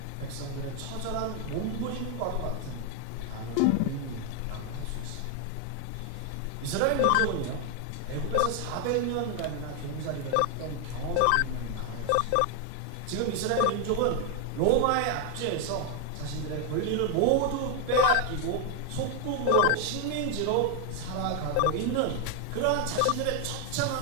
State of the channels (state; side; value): different; both; correlation 0.01